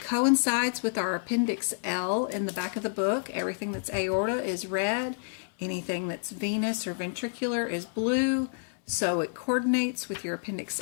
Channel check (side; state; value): right; silent; 59 dB below the other